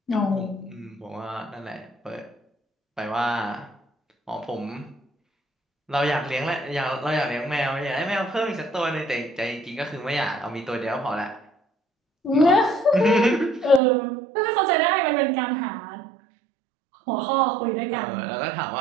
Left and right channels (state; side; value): drops out; left; at 13.8 s